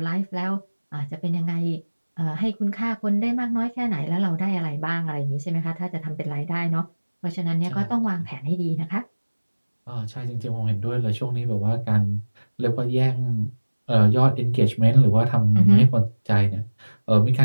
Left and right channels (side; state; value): both; inverted; correlation -1.00